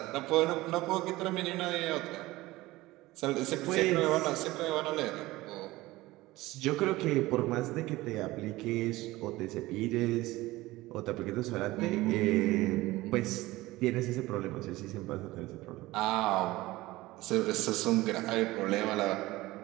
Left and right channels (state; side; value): quieter; left; 18.8 dB